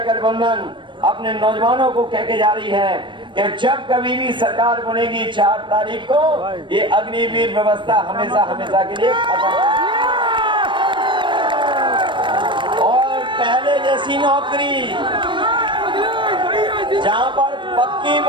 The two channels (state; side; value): late; left; 0.23 ms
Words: गठबंधन अपने नौजवानों को कह के जा रही है कि जब कभी भी सरकार बनेगी 4 तारीख को, ये अग्निवीर व्यवस्था हमेशा हमेशा के लिए खत्म। और पहले जैसी नौकरी जहां पर पक्की